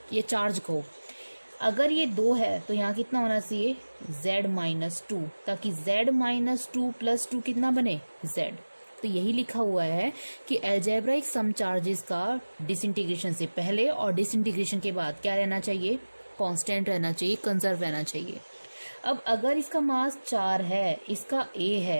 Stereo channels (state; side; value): inverted; both; correlation -1.00